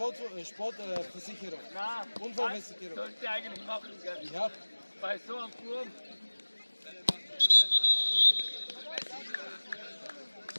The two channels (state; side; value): inverted; both; correlation -1.00